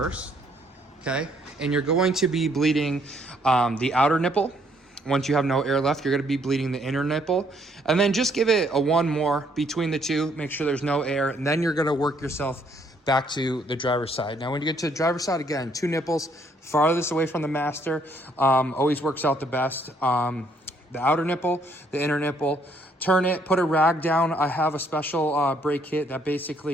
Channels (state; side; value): normal; both; correlation 0.67